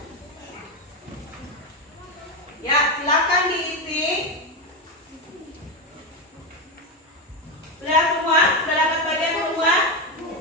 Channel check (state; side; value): normal; both; correlation 0.12